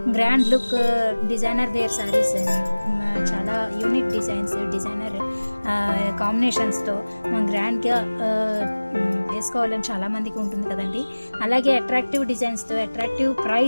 grand look designer wear saris చాలా యూనిక్ డిజైనర్ కాంబినేషన్స్తో గ్రాండ్గా వేసుకోవాలని చాలామందికి ఉంటుంది కదండి. అలాగే అట్రాక్టివ్ డిజైన్స్తో అట్రాక్టివ్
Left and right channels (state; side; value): inverted; both; correlation -1.00